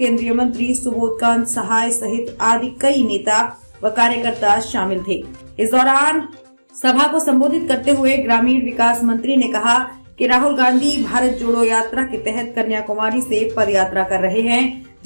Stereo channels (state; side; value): inverted; both; correlation -1.00